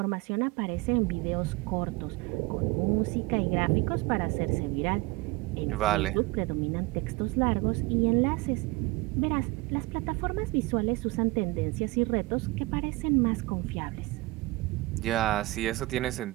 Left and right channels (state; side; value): quieter; left; 21.9 dB